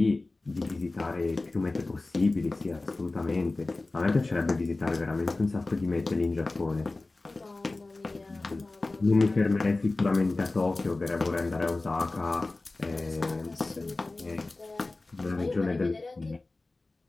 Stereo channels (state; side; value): quieter; right; 3.2 dB